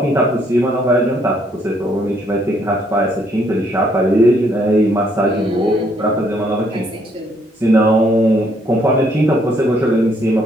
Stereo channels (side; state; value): both; normal; correlation 0.68